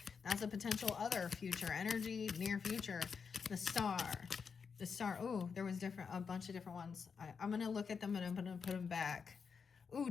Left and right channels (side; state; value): right; quieter; 5.9 dB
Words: that's a potential other future energy, near future. The Star. The Star. Oh, there was a bunch of different ones. I'm going to look at them and I'm going to put them back. Ooh,